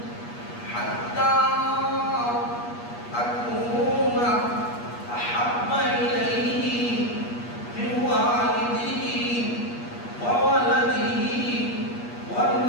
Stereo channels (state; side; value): late; right; 8.4 ms